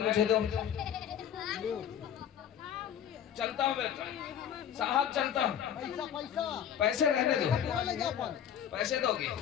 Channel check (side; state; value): right; quieter; 9.2 dB